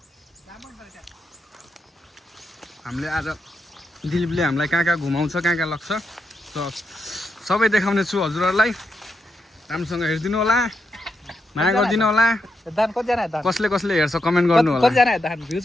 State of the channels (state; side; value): normal; both; correlation 0.83